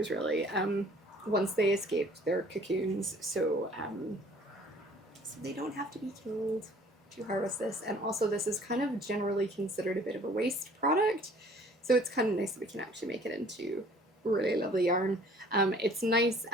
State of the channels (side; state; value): both; normal; correlation 0.53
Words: really, once they escaped their cocoons, so they don't have to be killed to harvest this. And also this is kind of generally considered a bit of a waste product, so it's kind of nice that we can actually make it into really lovely yarn. It's nice